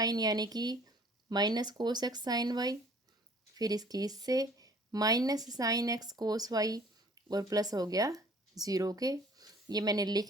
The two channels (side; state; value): both; normal; correlation 0.54